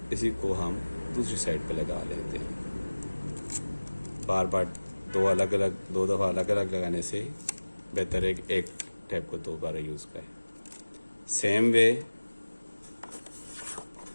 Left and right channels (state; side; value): inverted; both; correlation -1.00